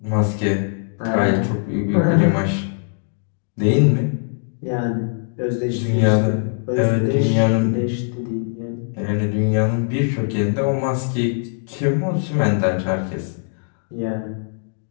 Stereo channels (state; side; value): silent; right; 65 dB below the other